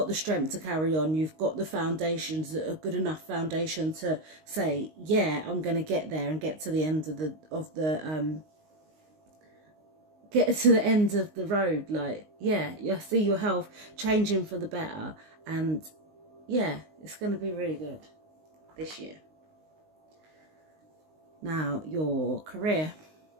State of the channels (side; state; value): left; late; 19 ms